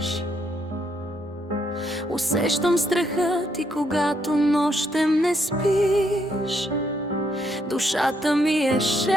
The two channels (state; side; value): normal; both; correlation 0.75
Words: Усещам страха ти, когато нощем не спиш. Душата ми е